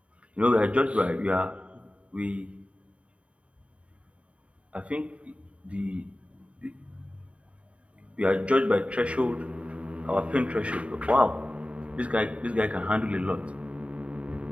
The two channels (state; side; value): late; left; 0.063 ms